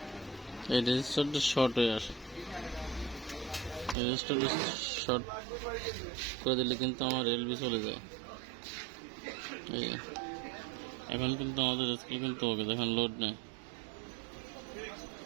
এই রেজিস্টারটা শর্ট হয়ে আসে। রেজিস্টারটা শর্ট করে দিলে কিন্তু আমার এলবি চলে যায়। এই এখন কিন্তু আমাদের স্কেল কিন্তু ওকে, দেখেন লোড নেই।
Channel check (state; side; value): drops out; left; at 4.0 s